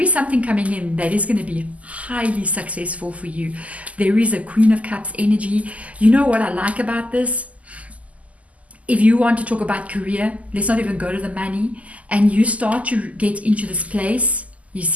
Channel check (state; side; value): late; left; 0.070 ms